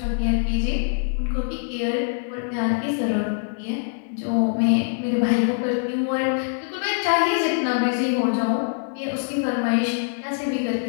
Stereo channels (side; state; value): right; silent; digital silence